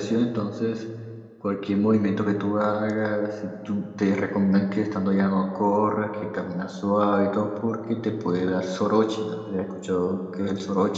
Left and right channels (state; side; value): identical; both; correlation 1.00